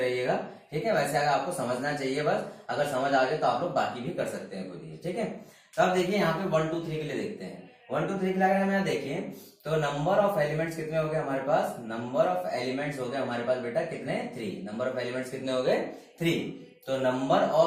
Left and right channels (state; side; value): identical; both; correlation 1.00